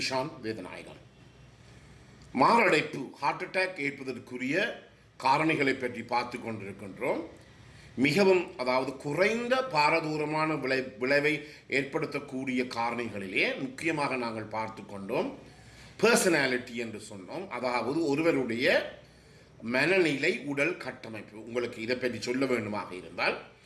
வேதநாயகன். மாரடைப்பு ஹார்ட் அட்டாக் ஏற்பதற்குரிய காரணிகளை பற்றி பார்த்து கொண்டிருக்கின்றோம். மிகவும் குறைந்த பாரதூரமான விளைவை ஏற்படுத்தக்கூடிய காரணிகளிலே முக்கியமாக நாங்கள் பார்த்து கொண்டோம். பர்சனாலிட்டி என்று சொன்னோம், அதாவது ஒருவருடைய மனநிலை, உடல் கட்டமைப்பு. உங்களுக்கு இதை பற்றி சொல்ல வேண்டுமாக இருந்தால்,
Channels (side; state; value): both; identical; correlation 1.00